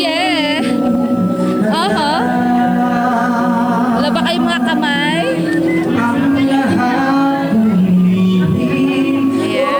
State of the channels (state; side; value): noise; left; hiss, 30 dB below the sound